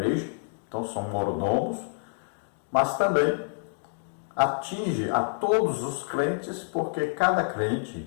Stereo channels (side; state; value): right; silent; digital silence